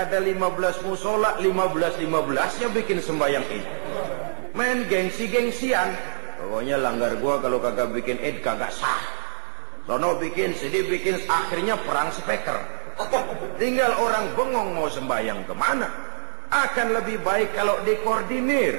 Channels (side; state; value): left; silent; digital silence